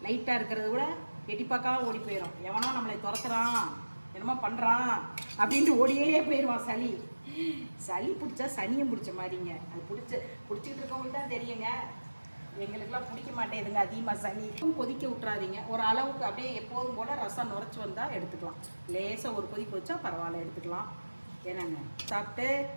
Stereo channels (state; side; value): inverted; both; correlation -1.00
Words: லைட்டாக இருக்கிறத விட எட்டி பார்க்காம ஓடி போயிடும். எவனோ நம்மளை துரத்துறான், என்னமோ பண்ணுறான் அப்படின்ட்டு ஓடியே போயிடுவான். சளி பிடிச்சா சனியம் பிடிச்ச மாதிரிங்க. அது பிடிச்சிக்கிட்டு இருக்கவங்களுக்கு தான் தெரியுங்க. எங்களுக்கெல்லாம் பிடிக்க மாட்டேங்குதுங்க அதிகமாக சளி. கொதிக்க விட்றாதீங்க. ஒரு அளவுக்கு அப்படியே எப்போதும் போல் ரசம் நுரைச்சி வந்தால் எடுத்துக்கலாம். லேசாக ஒரு கொதிக்க வச்சா பரவாயில்ல, எடுத்துக்கலாம். என்னங்க சாப்பிட்டு